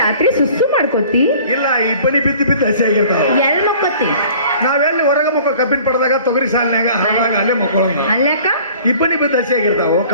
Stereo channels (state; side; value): inverted; both; correlation -0.49